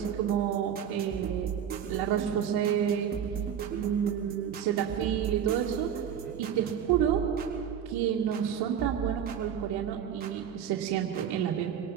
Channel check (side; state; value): left; quieter; 8.8 dB